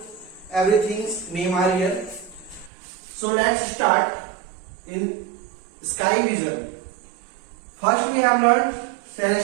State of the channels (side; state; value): left; drops out; at 2.7 s